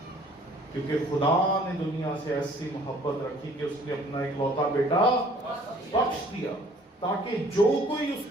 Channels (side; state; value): both; normal; correlation 0.56